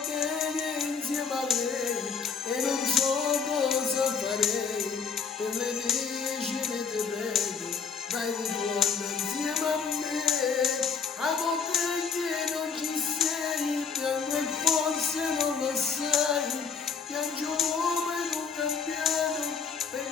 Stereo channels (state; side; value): quieter; right; 5.9 dB